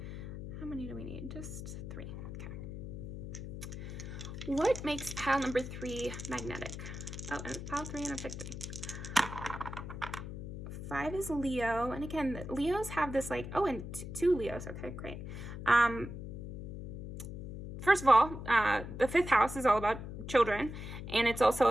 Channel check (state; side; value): noise; left; hum, 8 dB below the sound